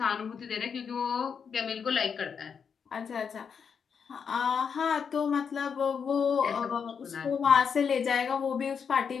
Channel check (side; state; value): right; quieter; 6.6 dB